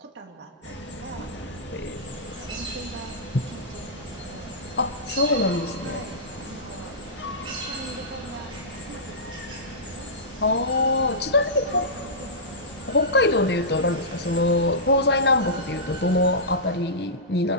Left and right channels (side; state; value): both; normal; correlation -0.15